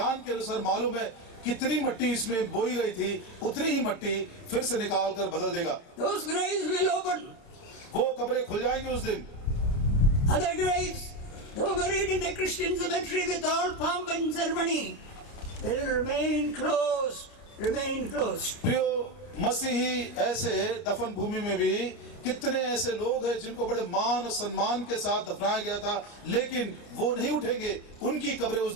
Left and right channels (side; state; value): right; late; 29 ms